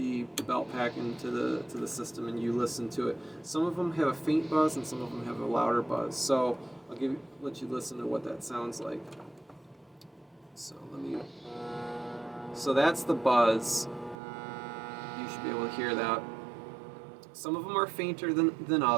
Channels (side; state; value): left; drops out; at 14.2 s